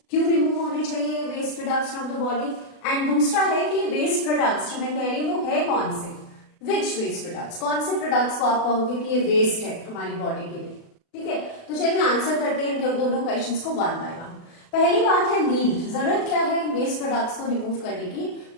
क्यों रिमूव होने चाहिए waste products from the body, and दूसरा है कि वेस्ट प्रोडक्ट्स जो मैं कह रही हूँ वो है कौन से, विच वेस्ट प्रोडक्ट्स, कौन से प्रोडक्ट्स को आप कहोगे कि ये वेस्ट है हमारी बॉडी के लिए। ठीक है, तो चलिए आंसर करते हैं दोनों क्वेश्चंस को वन बाय वन। पहली बात है नीड, जरूरत क्या है वेस्ट प्रोडक्ट्स को रिमूव करने की?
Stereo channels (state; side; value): late; right; 36 ms